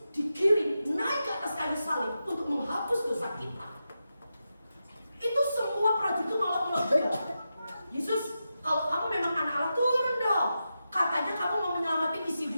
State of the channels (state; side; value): inverted; both; correlation -0.89